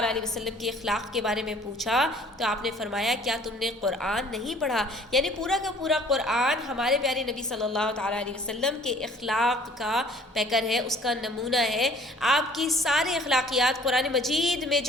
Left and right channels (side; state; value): both; normal; correlation 0.54